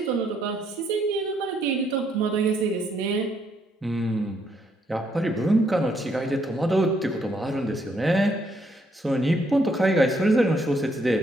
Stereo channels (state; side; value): normal; both; correlation 0.72